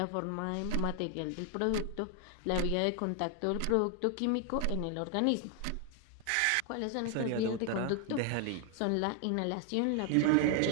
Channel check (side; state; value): both; different; correlation 0.00